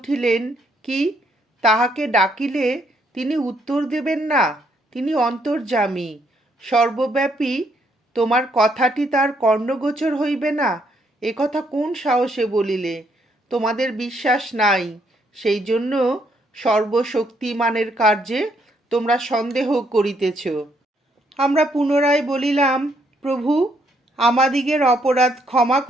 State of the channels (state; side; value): normal; both; correlation 0.72